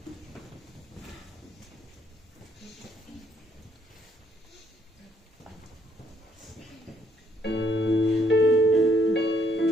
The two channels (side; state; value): both; normal; correlation 0.69